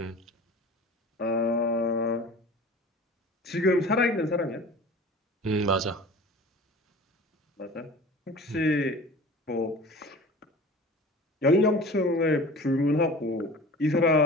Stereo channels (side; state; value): both; normal; correlation 0.40